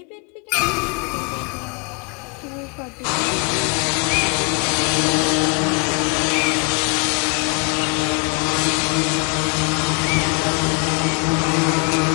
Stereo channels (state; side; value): quieter; right; 36.8 dB